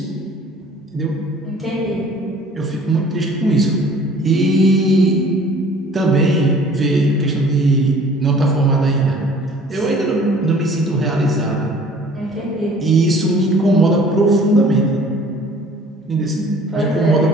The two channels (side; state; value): both; normal; correlation 0.51